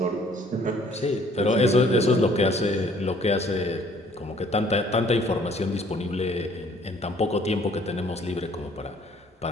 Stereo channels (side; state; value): both; normal; correlation 0.58